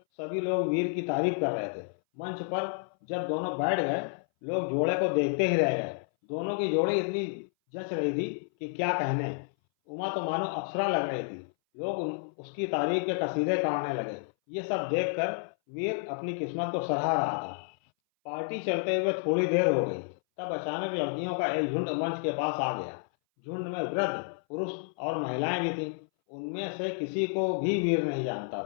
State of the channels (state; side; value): silent; right; 58 dB below the other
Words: सभी लोग वीर की तारीफ कर रहे थे। मंच पर जब दोनों बैठ गए, लोग जोड़े को देखते ही रह गए। दोनों की जोड़ी इतनी जच रही थी कि क्या कहने। उमा तो मानो अप्सरा लग रही थी। लोग उसकी तारीफ के कसीदे काटने लगे। ये सब देखकर वीर अपनी किस्मत को सराह रहा था। पार्टी चलते हुए थोड़ी देर हो गई, तब अचानक लड़कियों का एक झुंड मंच के पास आ गया। झुंड में वृद्ध पुरुष और महिलाएं भी थीं। उनमें से किसी को भी वीर नहीं जानता